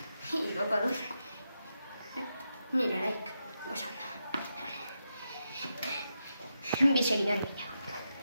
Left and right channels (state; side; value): inverted; both; correlation -0.86